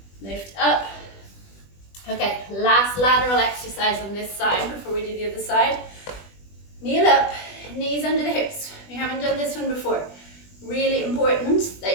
Lift up. Okay, last lateral exercise on this side before we do the other side. Kneel up, knees under the hips. We haven't done this one before. Really important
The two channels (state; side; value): late; right; 20 ms